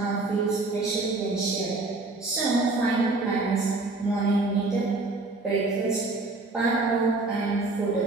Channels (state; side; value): quieter; left; 3.3 dB